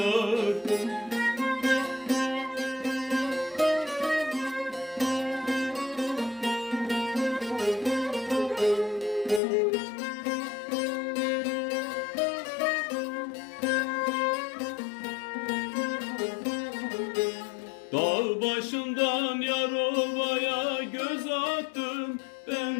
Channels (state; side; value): drops out; right; at 9.4 s